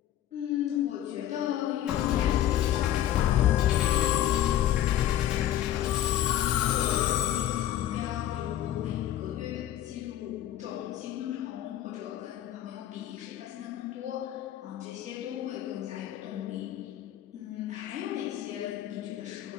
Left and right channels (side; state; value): right; quieter; 12.1 dB